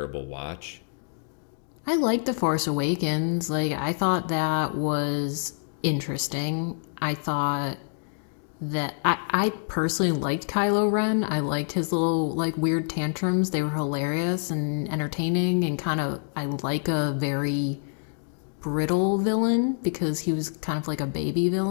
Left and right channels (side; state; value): right; silent; digital silence